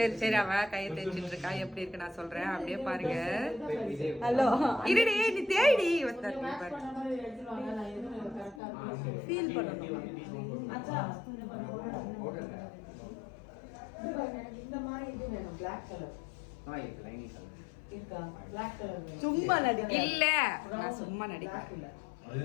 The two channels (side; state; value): right; drops out; at 8.6 s